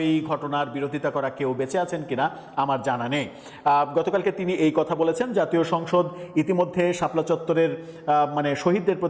ঘটনার বিরোধিতা করা কেউ বেঁচে আছেন কিনা আমার জানা নেই। গতকালকে তিনি এই কথা বলেছেন। জাতীয় সংসদ ইতিমধ্যে শাপলা চত্বরের মানে শহীদদের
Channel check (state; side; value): identical; both; correlation 1.00